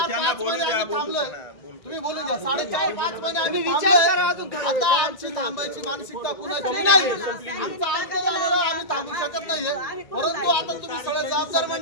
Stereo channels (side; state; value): right; late; 1.9 ms